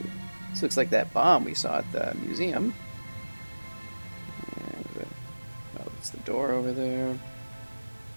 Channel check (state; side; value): inverted; both; correlation -1.00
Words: this looks like that bomb we saw at the museum. And, oh, it's the door over there.